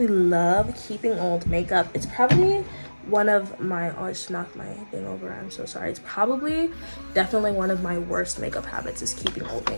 love keeping old makeup. It's probably one of my, oh, I just knocked my thing over, I'm so sorry. It's probably definitely one of my worst makeup habits is keeping old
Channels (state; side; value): inverted; both; correlation -1.00